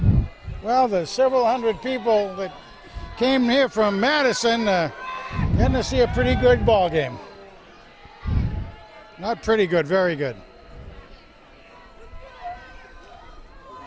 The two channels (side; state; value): both; identical; correlation 1.00